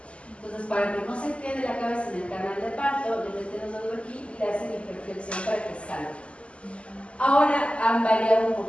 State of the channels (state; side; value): late; right; 0.057 ms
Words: Entonces, para que no se quede la cabeza en el canal de parto, le meten los dedos aquí y le hacen hiperflexión para que salga. Ahora han variado un